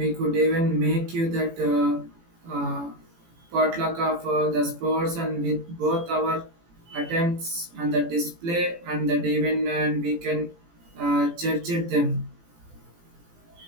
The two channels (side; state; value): left; late; 18 ms